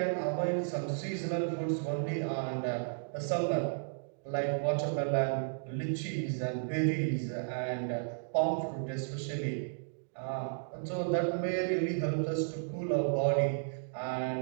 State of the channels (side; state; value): left; silent; digital silence